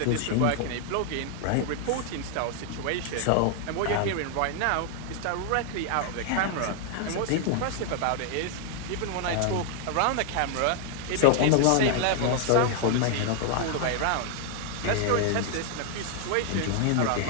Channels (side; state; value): both; different; correlation 0.00